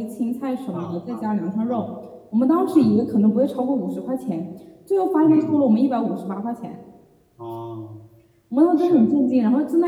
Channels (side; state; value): both; identical; correlation 1.00